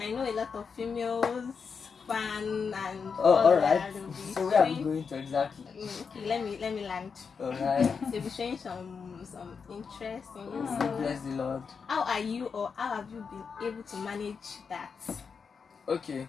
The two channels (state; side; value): quieter; right; 5.7 dB